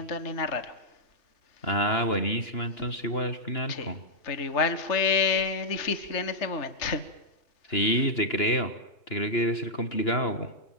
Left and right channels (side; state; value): right; late; 2.9 ms